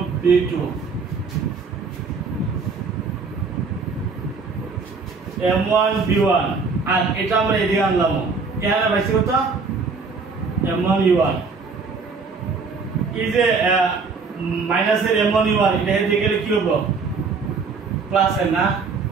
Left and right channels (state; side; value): quieter; left; 4.6 dB